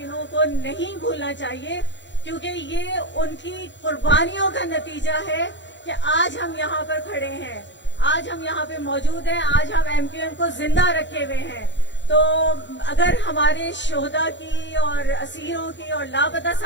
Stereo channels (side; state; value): right; late; 0.53 ms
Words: को नहीं भूलना चाहिए, क्योंकि ये उनकी कुर्बानियों का नतीजा है कि आज हम यहाँ पर खड़े हैं, आज हम यहाँ पे मौजूद हैं, आज हम एमक्यूएम को जिंदा रखे हुए हैं। तो अगर हमारे शोहदा की और असीरों की और लापता